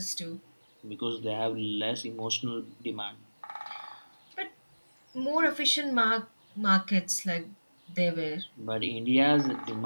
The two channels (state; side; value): inverted; both; correlation -1.00